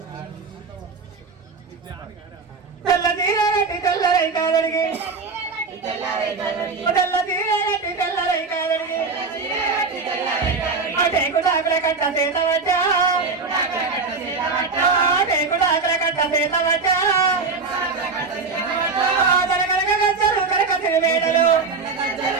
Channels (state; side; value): quieter; left; 4.4 dB